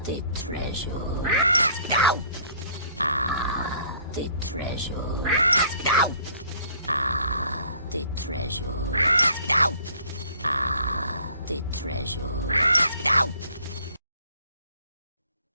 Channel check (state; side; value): inverted; both; correlation -0.58